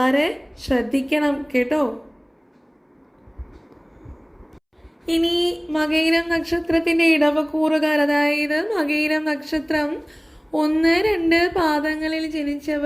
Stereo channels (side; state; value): both; identical; correlation 1.00